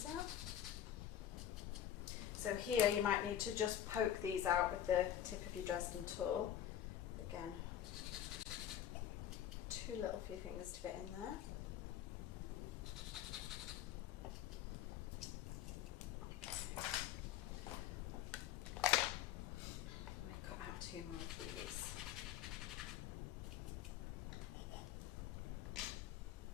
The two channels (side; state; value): right; quieter; 10.8 dB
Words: out. So here you might need to just poke these out with the tip of your Dresden tool. Again, too little for your fingers to fit in there. Two more of these.